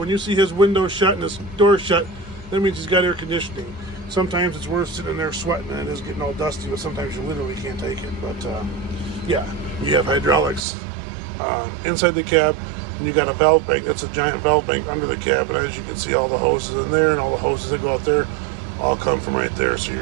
you see his window shut and his door shut, that means he's got air conditioning. Sometimes it's worse sitting in there sweating than it is getting all dusty, but sometimes you literally can't take it. But yeah, you have hydraulics inside the cab, and you got a valve bank. That's a giant valve bank under the cab, and as you can see, all the hoses in there and all the hoses that go out there all come from right there. So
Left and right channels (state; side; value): drops out; left; at 10.6 s